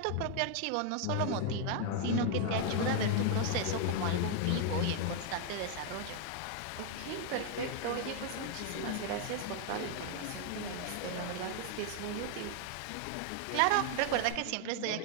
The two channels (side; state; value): both; different; correlation 0.00